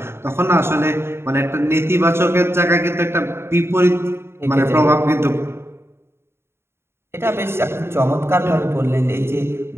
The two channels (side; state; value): left; late; 0.12 ms